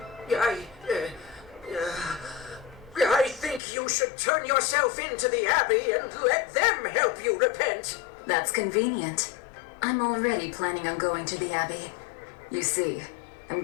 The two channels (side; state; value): right; drops out; at 3.6 s